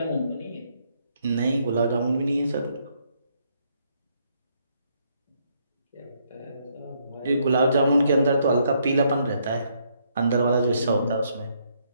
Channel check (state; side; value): inverted; both; correlation -0.73